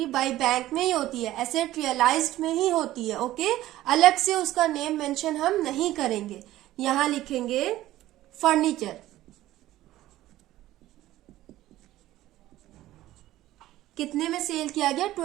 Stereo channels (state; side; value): quieter; left; 15.1 dB